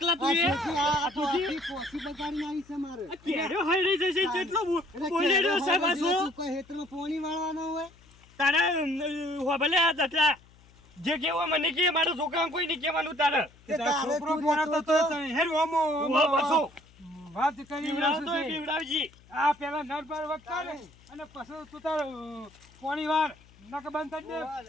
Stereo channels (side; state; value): left; noise; hum, 26 dB below the sound